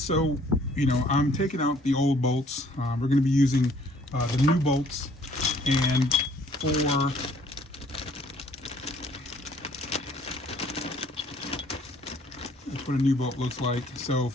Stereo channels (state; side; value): normal; both; correlation 0.60